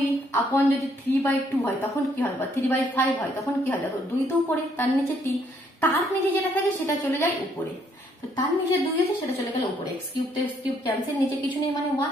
আপন যদি 3/2 হয় তখন কি হয়, বা 3/5 হয় তখন কি হয়? দেখো 2 তো উপরে, তার নিচে 3, তার নিচে যেটা থাকে সেটা চলে যায় উপরে। তো তার নিচে 2 আছে, সেটা চলে গেল উপরে। x কিউব তো x কিউব ক্যান্সেল, নিচে কিছু নেই মানে 1,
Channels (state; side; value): normal; both; correlation 0.69